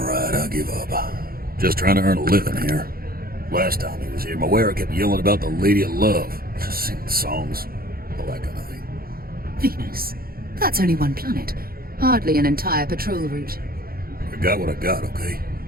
I'll give up. Just trying to earn a living here. Last time he was here, my wearer kept yelling about the Lady of Love. Just singing songs. All that kind of thing. Venus? That's only one planet. Hardly an entire patrol route. I got what I got, okay?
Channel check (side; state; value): left; late; 0.43 ms